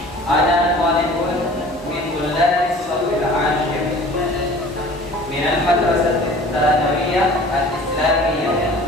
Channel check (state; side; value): normal; both; correlation 0.46